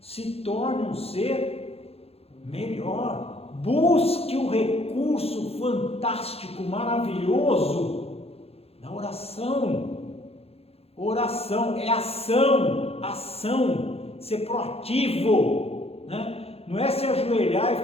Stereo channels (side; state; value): right; late; 0.29 ms